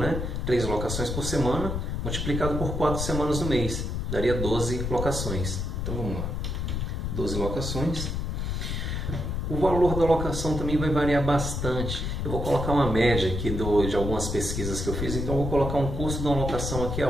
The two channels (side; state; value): left; noise; rumble, 2 dB below the sound